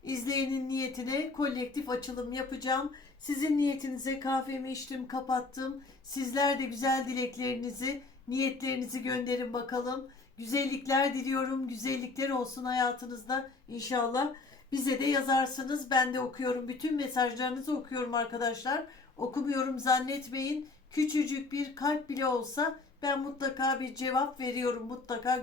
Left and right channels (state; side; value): quieter; right; 3.7 dB